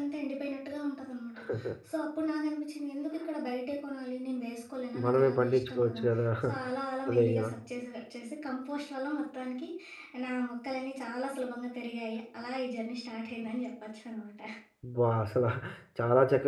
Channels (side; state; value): both; identical; correlation 1.00